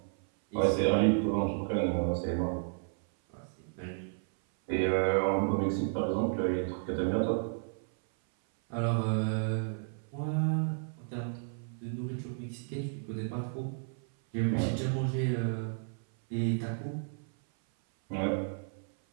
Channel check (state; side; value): silent; left; 56 dB below the other